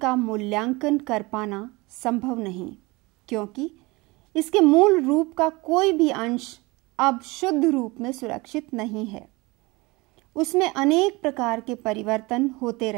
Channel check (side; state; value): left; quieter; 23.9 dB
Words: मूल्यांकन कर पाना संभव नहीं, क्योंकि इसके मूल रूप का कोई भी अंश अब शुद्ध रूप में सुरक्षित नहीं है। उसमें अनेक प्रकार के परिवर्तन होते